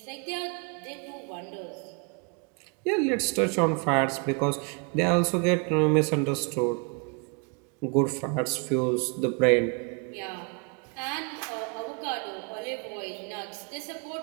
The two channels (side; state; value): left; quieter; 36.3 dB